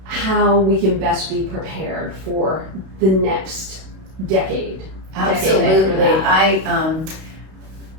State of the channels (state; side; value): late; left; 32 ms